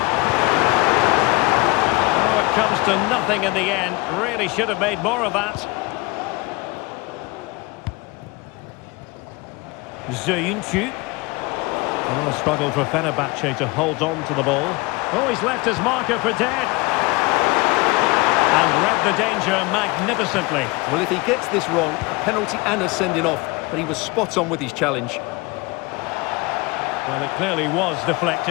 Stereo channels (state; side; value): quieter; right; 24.6 dB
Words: Oh, it comes to nothing in the end. Really should have made more of that. Zayuncu. Oh, a struggle for Fenerbahce to hold on to the ball. Oh, he's left his marker for dead. And read the danger magnificently. Well, if he gets this wrong, a penalty and a sending off, but he was spot on with his challenge. Well, it clearly was